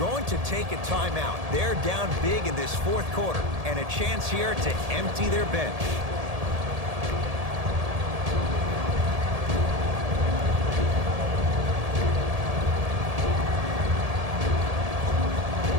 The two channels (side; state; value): left; late; 1.7 ms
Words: to take a timeout. They're down big in this 4th quarter. And a chance here to empty their bench.